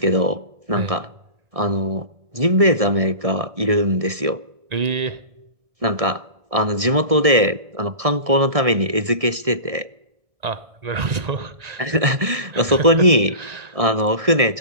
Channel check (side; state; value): left; late; 1.7 ms